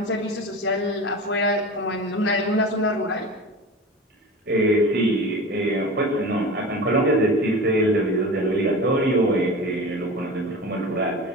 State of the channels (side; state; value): both; normal; correlation 0.32